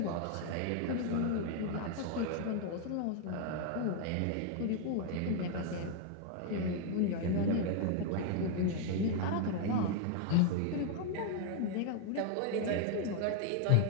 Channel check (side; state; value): both; different; correlation 0.00